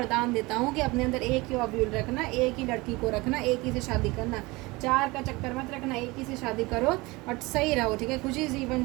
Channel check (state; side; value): quieter; left; 22.9 dB